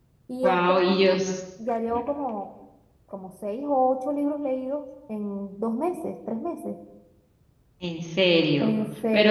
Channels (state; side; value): identical; both; correlation 1.00